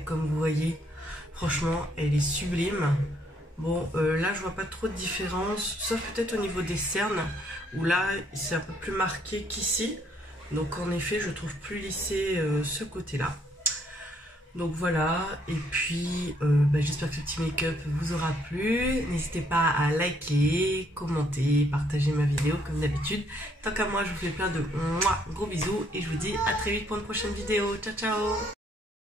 comme vous voyez, franchement, elle est sublime. Bon, là, je vois pas trop de différence, sauf peut-être au niveau des cernes, où là, c'est un peu plus marqué qu'ici. Donc en effet, je trouve plus lissé ce côté-là. Donc voilà, et puis j'espère que ce petit make-up vous aura plu. N'hésitez pas à liker, commenter, partager ma vidéo comme d'habitude. Tant qu'à moi, je vous fais plein de gros bisous et je vous dis à très vite pour une prochaine vidéo. Ciao ciao.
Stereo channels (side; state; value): both; normal; correlation 0.68